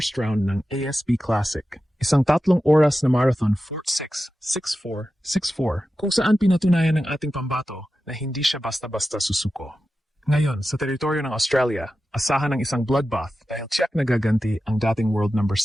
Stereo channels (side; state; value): both; normal; correlation 0.92